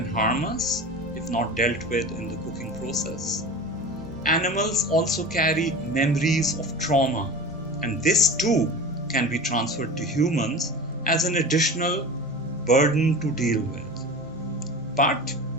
harm us if not dealt with in the cooking process. Animals also carry memories of trauma, and this too can be transferred to humans as an additional burden to deal with. But,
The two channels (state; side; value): normal; both; correlation 0.33